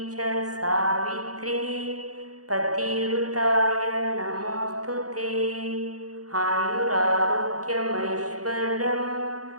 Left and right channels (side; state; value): left; late; 0.67 ms